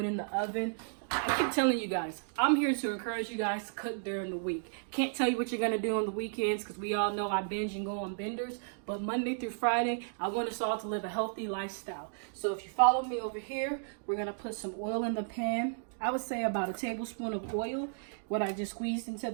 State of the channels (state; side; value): silent; left; digital silence